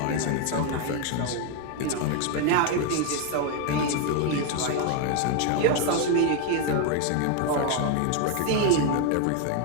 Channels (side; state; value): both; different; correlation 0.01